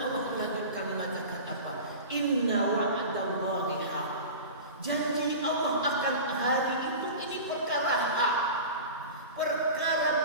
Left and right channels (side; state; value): both; inverted; correlation -0.33